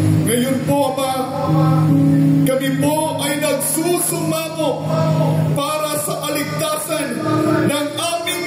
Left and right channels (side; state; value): both; identical; correlation 1.00